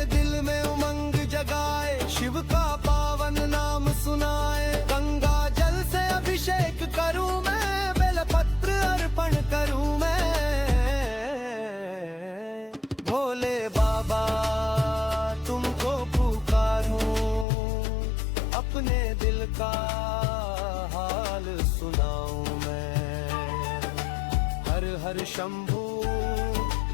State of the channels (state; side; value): drops out; right; at 17.4 s